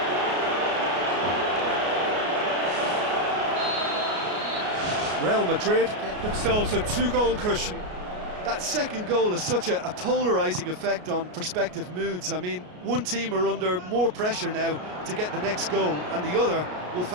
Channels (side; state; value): left; late; 33 ms